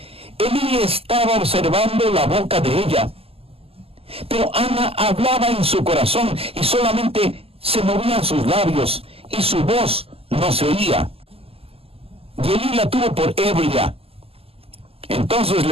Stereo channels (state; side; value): late; left; 0.28 ms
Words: Elí estaba observando la boca de ella, pero Ana hablaba en su corazón y solamente se movían sus labios y su voz no se oía. Y Elí la tuvo por ebria. Entonces